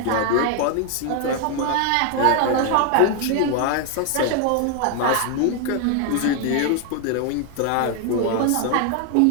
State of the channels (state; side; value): different; both; correlation 0.00